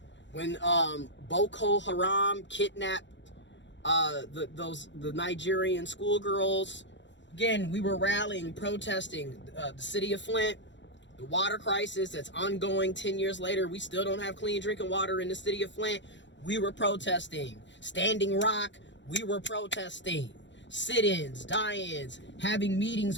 when Boko Haram kidnapped the Nigerian schoolgirls, again, we were rallying, protesting. The city of Flint, the water crisis that's ongoing 10 years later, we still don't have clean drinking water in the city of Flint. We were protesting. Standing Rock, we were protesting. Sit-ins, die-ins, having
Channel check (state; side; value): late; right; 0.53 ms